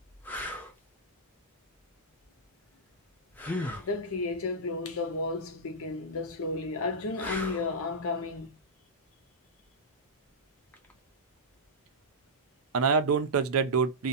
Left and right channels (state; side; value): normal; both; correlation -0.11